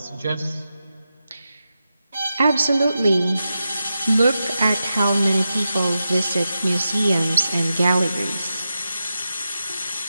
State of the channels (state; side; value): inverted; both; correlation -0.90